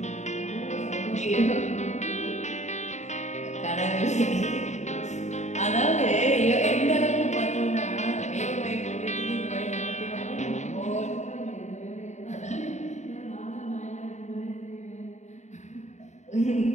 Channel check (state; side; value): late; right; 0.34 ms